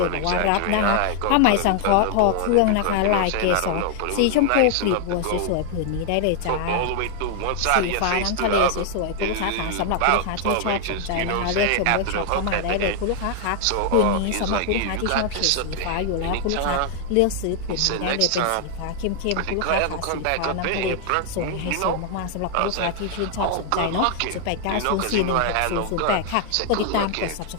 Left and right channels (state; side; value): different; both; correlation 0.00